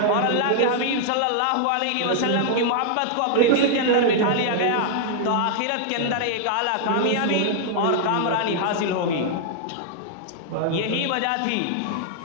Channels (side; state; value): both; different; correlation -0.01